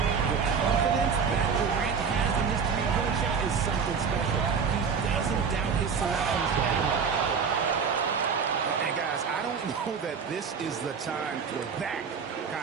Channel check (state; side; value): quieter; left; 6.0 dB